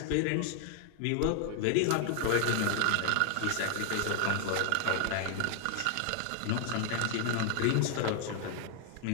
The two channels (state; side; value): different; both; correlation 0.00